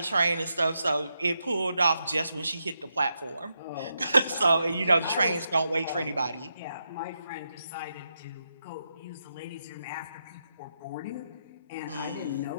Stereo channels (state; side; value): inverted; both; correlation -0.84